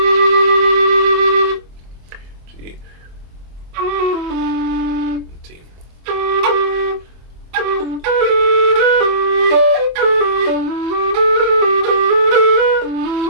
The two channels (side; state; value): left; late; 24 ms